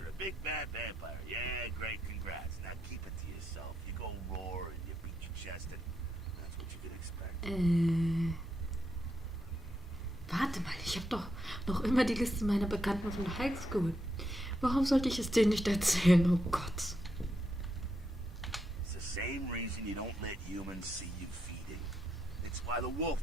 a big bad vampire. Yeah, great, congrats. Now keep it to yourself. You go roar and you beat your chest, and that's what you can expect. Warte mal, ich habe doch noch immer die Liste meiner Bekannten von der High School. Warum sollte ich es denen nicht erzählen? Oh Gott. It's the same reason you don't let humans see you feeding. It's why the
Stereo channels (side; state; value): both; normal; correlation 0.81